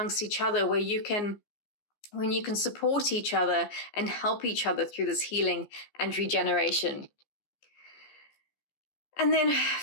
each other when you can support each other and help each other through this healing and regeneration. And then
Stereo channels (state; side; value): late; right; 14 ms